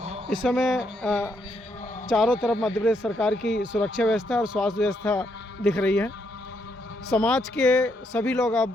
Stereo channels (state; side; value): normal; both; correlation 0.76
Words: इस समय चारों तरफ मध्य प्रदेश सरकार की सुरक्षा व्यवस्था और स्वास्थ्य व्यवस्था दिख रही है। समाज के सभी लोग